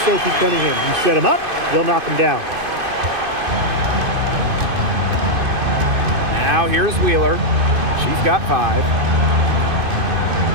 Sophie Cunningham. You set them up, they'll knock them down. Now here's Wheeler. She's got 5.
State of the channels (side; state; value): left; late; 2.5 ms